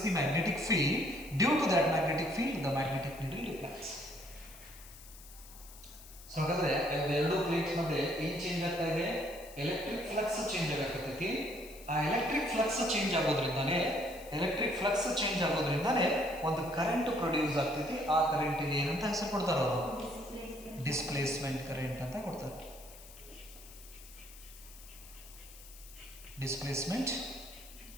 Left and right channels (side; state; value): left; noise; hiss, 18 dB below the sound